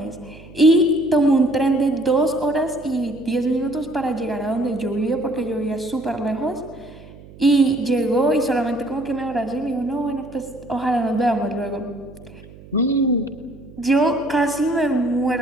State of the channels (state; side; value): noise; right; hum, 20 dB below the sound